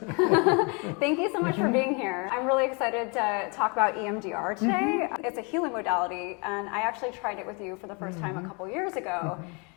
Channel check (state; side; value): quieter; right; 32.7 dB